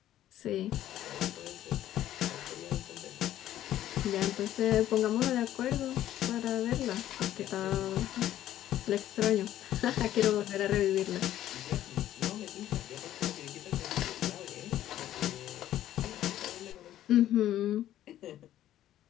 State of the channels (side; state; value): right; quieter; 12.6 dB